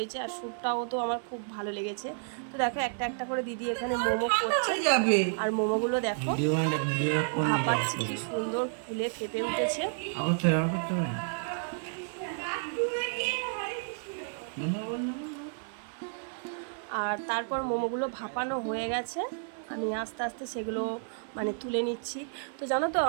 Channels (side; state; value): left; silent; 57 dB below the other